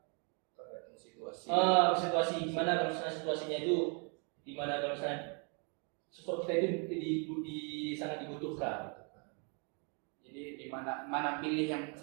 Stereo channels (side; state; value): left; quieter; 37.5 dB